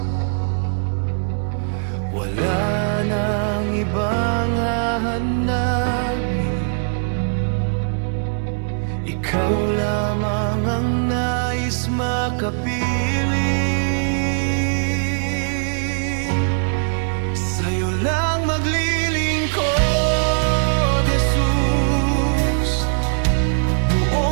Wala nang ibang hahanapin, ikaw lamang ang nais makapiling. Sa'yo lang maglilingkod, Jesus,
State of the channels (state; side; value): silent; left; 62 dB below the other